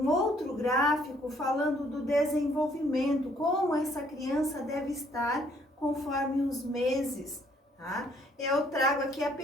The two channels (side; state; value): both; normal; correlation 0.65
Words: outro gráfico falando do desenvolvimento, como essa criança deve estar conforme os meses. Tá? Eu trago aqui